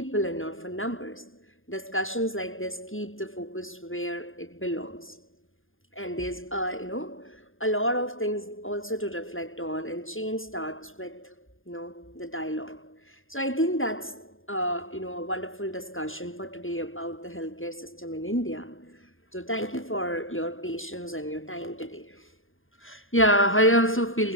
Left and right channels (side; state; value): right; late; 0.59 ms